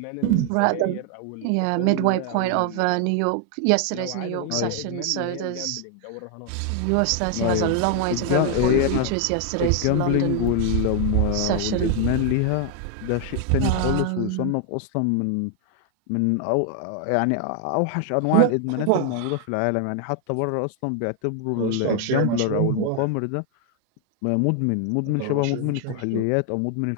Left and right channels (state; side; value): different; both; correlation 0.00